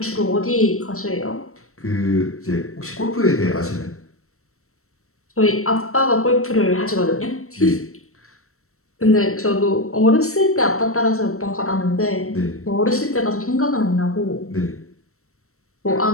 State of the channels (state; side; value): late; right; 0.63 ms